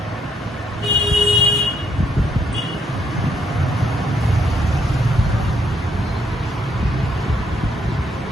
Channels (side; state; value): both; normal; correlation 0.71